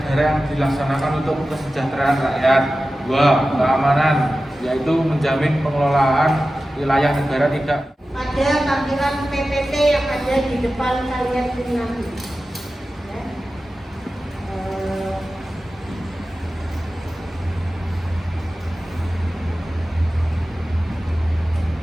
yang dilaksanakan untuk kesejahteraan rakyat. Dua, keamanan, yaitu menjamin pengelolaan wilayah negara tidak. Ada tampilan PPT yang ada di depan kalian ini nanti. Ya.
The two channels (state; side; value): normal; both; correlation 0.94